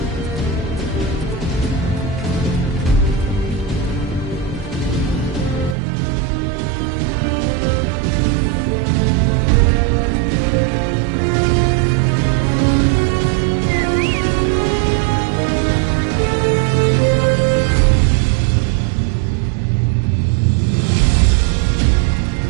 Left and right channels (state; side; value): drops out; left; at 5.8 s